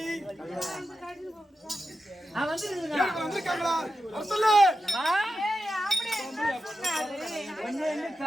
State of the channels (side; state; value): both; normal; correlation 0.90